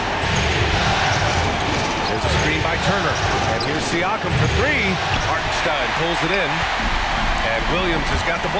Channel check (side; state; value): both; identical; correlation 1.00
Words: There's a screen by Turner. And here's Siakam for 3. Hartenstein pulls it in. And Williams has got the